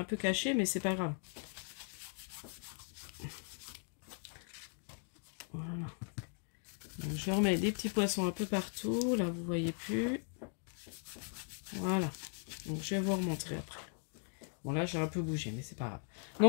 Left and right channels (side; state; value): right; silent; 52 dB below the other